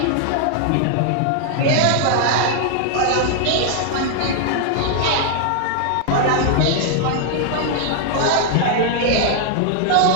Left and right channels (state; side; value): different; both; correlation 0.00